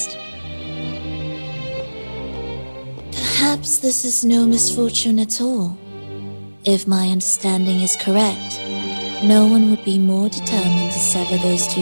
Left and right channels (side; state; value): both; inverted; correlation -1.00